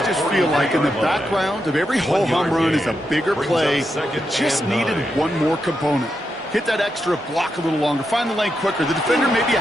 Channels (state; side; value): normal; both; correlation 0.85